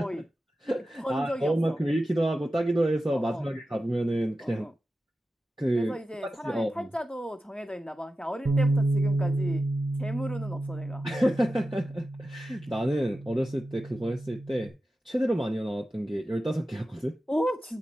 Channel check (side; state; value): both; normal; correlation 0.93